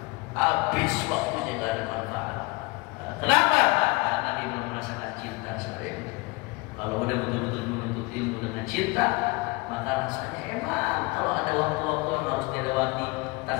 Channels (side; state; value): right; quieter; 25.0 dB